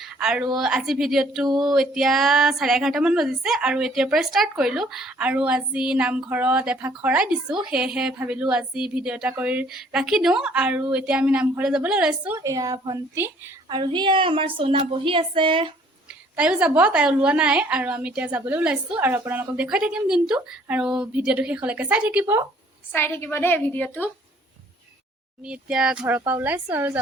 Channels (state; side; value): normal; both; correlation 0.59